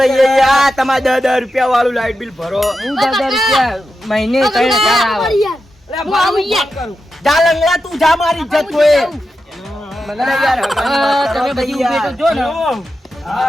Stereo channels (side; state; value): both; normal; correlation 0.89